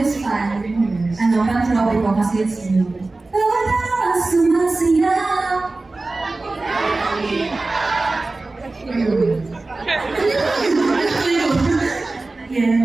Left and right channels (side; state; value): left; quieter; 3.3 dB